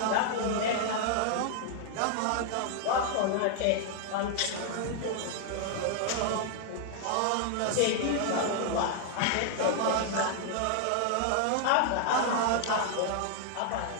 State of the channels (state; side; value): different; both; correlation 0.00